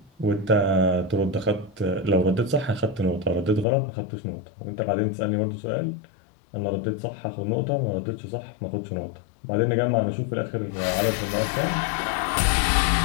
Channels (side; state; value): right; drops out; at 3.7 s